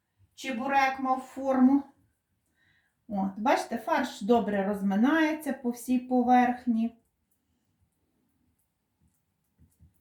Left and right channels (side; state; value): both; identical; correlation 1.00